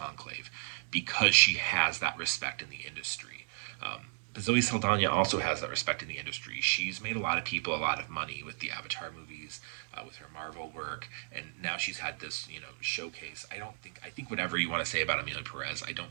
because she has that respect in the industry. But Zoe Saldana also has that respect in the industry. She's made a lot of people a lot of money with the Avatar movies, with her Marvel work, and now she's had this, showcase. I think whatever you want to say about Amelia Perez, I don't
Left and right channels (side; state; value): left; silent; digital silence